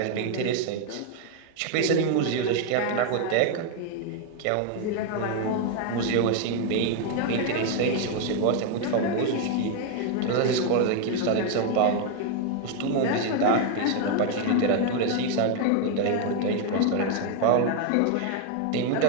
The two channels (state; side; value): different; both; correlation 0.01